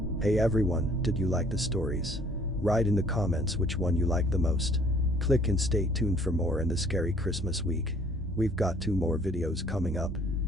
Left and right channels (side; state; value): both; normal; correlation 0.58